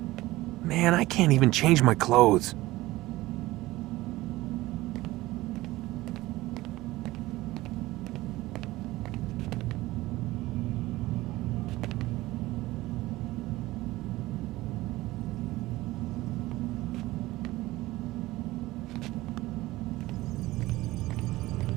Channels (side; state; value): left; quieter; 18.1 dB